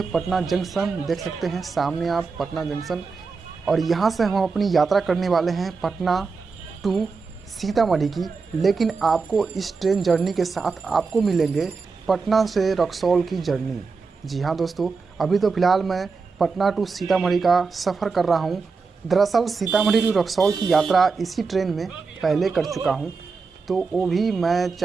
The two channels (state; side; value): quieter; left; 4.7 dB